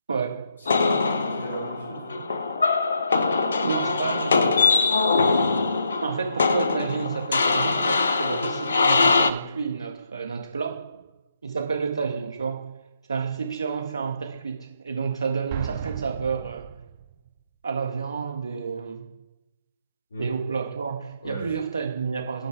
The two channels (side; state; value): both; inverted; correlation -0.77